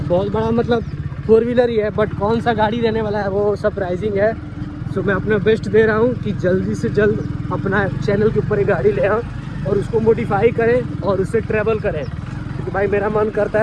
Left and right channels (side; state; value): both; identical; correlation 1.00